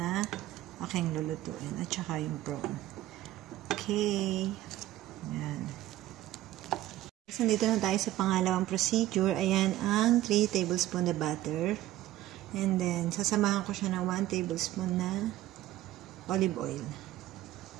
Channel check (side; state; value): left; quieter; 14.9 dB